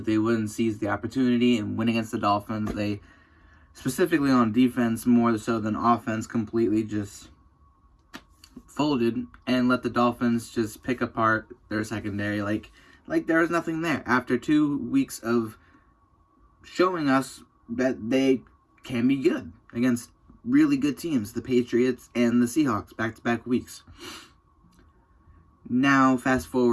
they wouldn't seize the opportunity and win against the Dolphins. They, specifically on defense, more so than offense, completely just folded and let the Dolphins just pick apart their secondary like there was nothing there. After 2 weeks of showing us that they can be good against really good teams, the Patriots and the Seahawks, back-to-back weeks. Now, fast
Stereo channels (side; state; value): both; identical; correlation 1.00